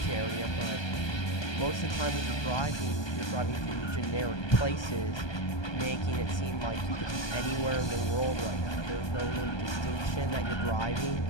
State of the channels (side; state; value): right; late; 1.2 ms